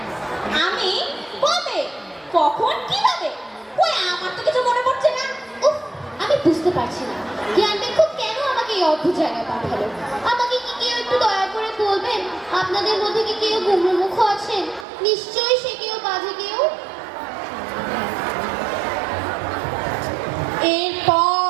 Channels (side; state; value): left; drops out; at 14.9 s